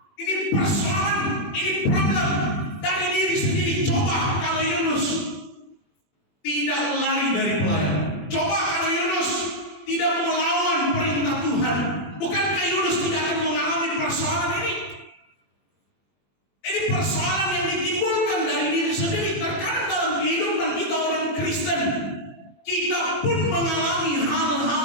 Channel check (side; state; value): right; late; 21 ms